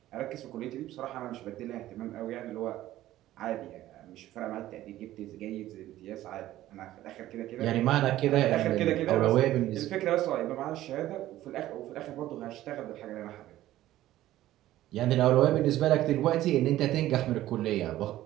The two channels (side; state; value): left; quieter; 14.5 dB